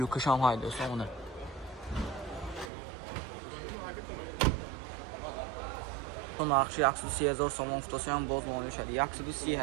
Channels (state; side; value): drops out; left; at 2.7 s